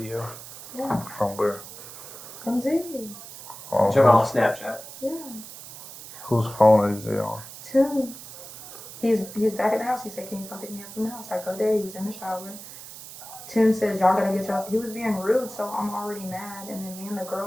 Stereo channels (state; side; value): noise; right; hiss, 14 dB below the sound